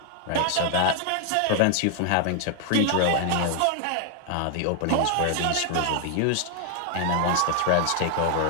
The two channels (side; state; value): both; different; correlation 0.00